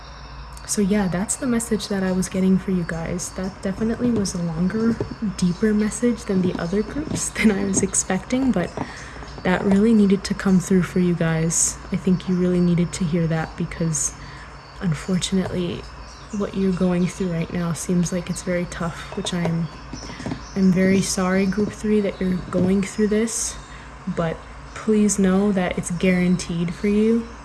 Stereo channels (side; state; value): both; identical; correlation 1.00